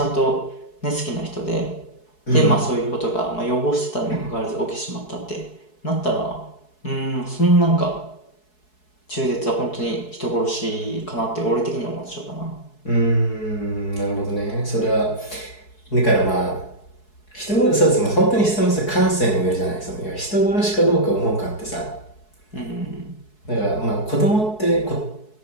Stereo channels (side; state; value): right; late; 4.7 ms